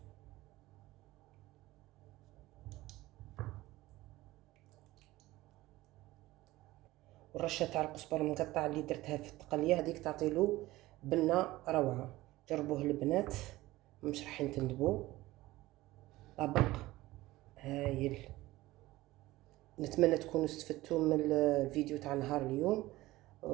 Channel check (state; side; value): quieter; left; 17.9 dB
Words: والرشه تاع القزبر المقطع اللي درتها في التقليه هذيك تعطيلو بنه روعه. جربوه البنات، مش راح تندبوا. طبق هايل. نتمنى تكونوا استفدتوا من الفيديو تاع نهار اليوم،